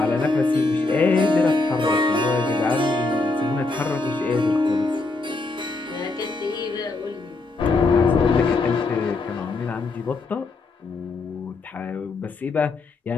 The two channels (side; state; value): right; quieter; 3.4 dB